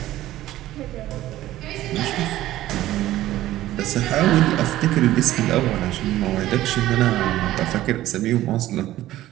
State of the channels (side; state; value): left; quieter; 14.7 dB